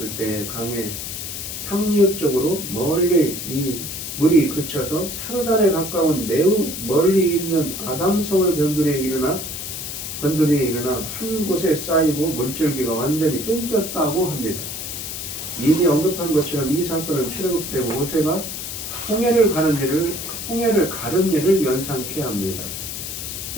때 강의 상류 쪽으로 멀리 이 물이 그쳐서 사르단에 가까운 매우 멀리 있는 아담성을 변두리에 일어나 한 곳에 쌓이고 물줄기가 완전히 끊겼다고 합니다. 이미 언급한 것처럼 이 사건은 출애굽 때 모세가 홍해를 가른 일을 연상케 합니다.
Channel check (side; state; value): left; noise; hiss, 6 dB below the sound